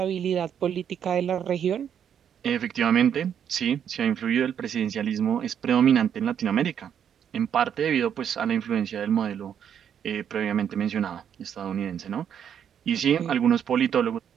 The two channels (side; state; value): left; quieter; 8.7 dB